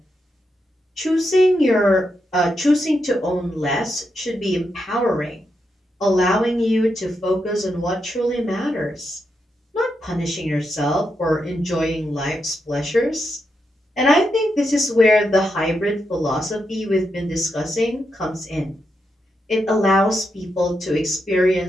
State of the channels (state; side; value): normal; both; correlation 0.84